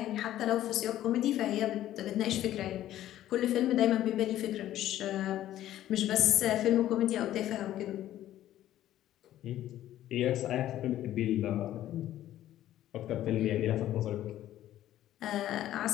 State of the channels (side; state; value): right; quieter; 13.0 dB